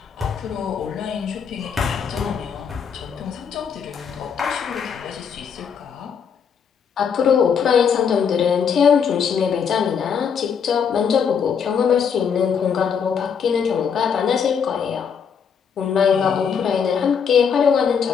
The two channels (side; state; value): right; quieter; 6.9 dB